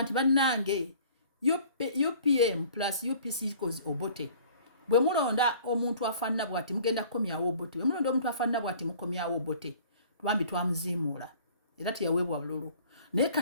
nti bannange UPM plus UPC equals Obote bwe mulonda omuntu afaanana bw'ati mugenda kukomyawo Obote bwe mulonda omuntu afaanana bw'ati mukomyawo Obote twambi twamuziimuula era teyaweebwa bululu naye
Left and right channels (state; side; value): inverted; both; correlation -0.51